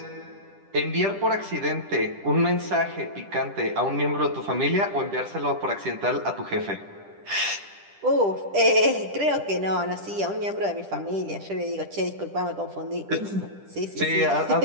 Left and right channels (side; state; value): left; late; 10 ms